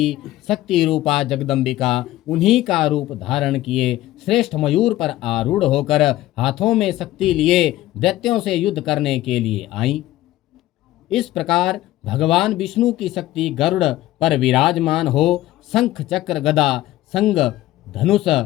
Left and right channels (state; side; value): quieter; right; 15.5 dB